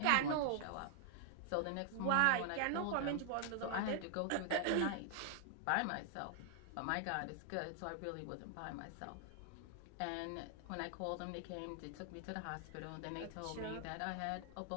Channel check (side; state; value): both; different; correlation 0.00